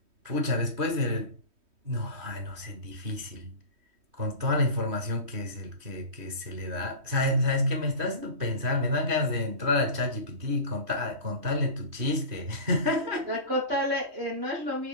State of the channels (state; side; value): late; left; 3.1 ms